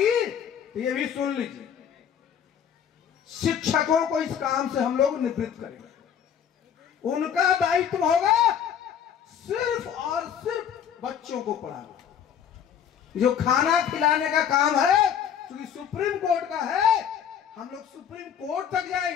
तो ये भी सुन लीजिए, शिक्षकों को इस काम से हम लोग निवृत्त करेंगे। उनका दायित्व होगा सिर्फ और सिर्फ बच्चों को पढ़ाना। जो खाना खिलाने का काम है क्योंकि सुप्रीम कोर्ट का है, हम लोग सुप्रीम कोर्ट तक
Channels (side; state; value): right; quieter; 8.5 dB